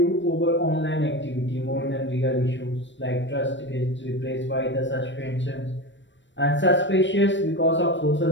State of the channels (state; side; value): late; right; 0.53 ms